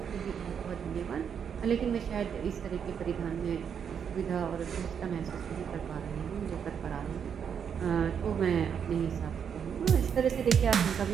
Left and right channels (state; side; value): quieter; left; 7.6 dB